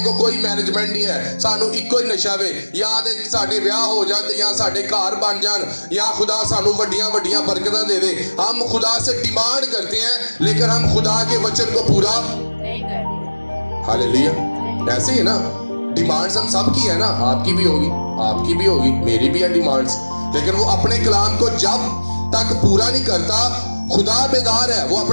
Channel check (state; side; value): inverted; both; correlation -1.00